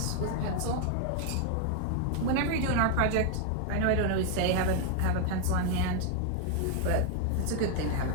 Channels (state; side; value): different; both; correlation 0.00